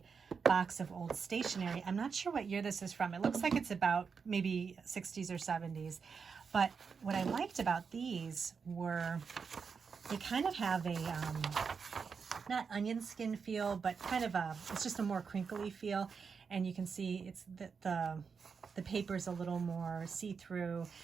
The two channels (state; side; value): quieter; left; 5.7 dB